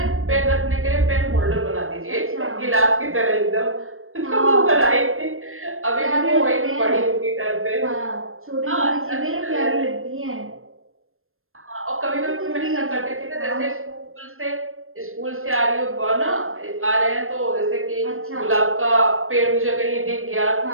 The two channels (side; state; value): left; late; 0.61 ms